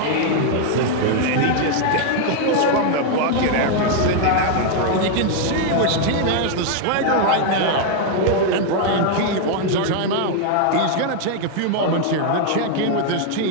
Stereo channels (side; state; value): both; different; correlation 0.00